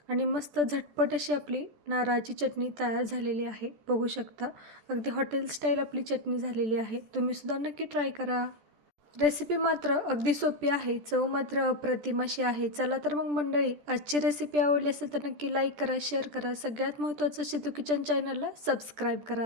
आणि मस्त झटपट अशी आपली नारळाची चटणी तयार झालेली आहे, बघू शकता. अगदी हॉटेल स्टाईल आपली चटणी झालेली आहे. तुम्हीसुद्धा नक्की ट्राय करा. रेसिपी मात्र अगदी सोपी आहे, चव मात्र अप्रतिम अशी आहे. चला तर मग मंडळी, आजची रेसिपी आवडली असेल तर नक्की लाईक करा, शेअर करा. सगळ्यात महत्त्वाचं शितू किचन चॅनलला सबस्क्राईब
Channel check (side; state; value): left; late; 14 ms